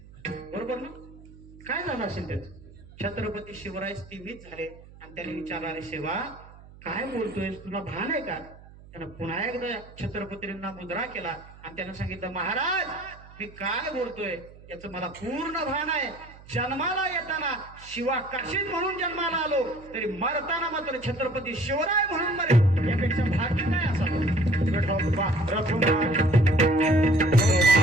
बरोबर ना? काय झालं असेल त्याच? छत्रपती शिवराय स्थिमित झाले आणि त्याने विचारलं, अरे शिवा काय बोलतोय, तुला भान आहे का? त्यानं पुन्हा एकदा छत्रपतींना मुद्रा केला आणि त्यानं सांगितलं, महाराज मी काय बोलतोय याचं मला पूर्ण भान आहे. जन्माला येताना शिवाकाशीत म्हणून जन्माला आलो, तरी मरताना मात्र छत्रपती शिवराय म्हणून मरे, यापेक्षा भाग्य नाही असावं.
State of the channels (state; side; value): noise; right; hum, 20 dB below the sound